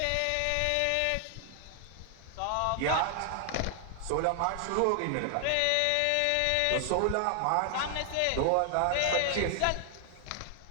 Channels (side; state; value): both; different; correlation 0.00